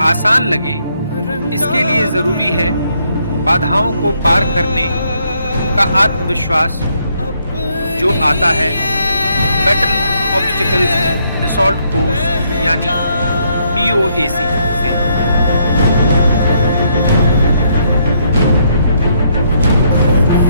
आसान लगे, इसके लिए जरूरी है बाधाओं को पार करने का आत्मविश्वास जो आता है बैटल ऑब्स्टिकल असॉल्ट कोर्स यानी BOAC से।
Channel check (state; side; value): inverted; both; correlation -0.72